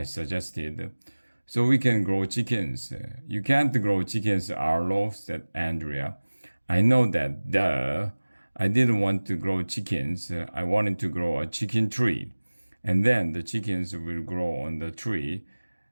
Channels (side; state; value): both; inverted; correlation -1.00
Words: suggested, "so we can grow chickens." "You can't grow chickens, Arlo," said Andrea. "I know that, duh. I didn't want to grow chickens. I wanted to grow a chicken tree. And then the chickens will grow on the tree."